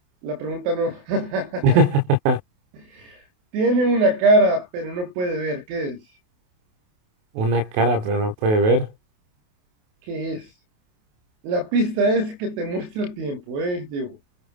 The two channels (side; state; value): left; late; 28 ms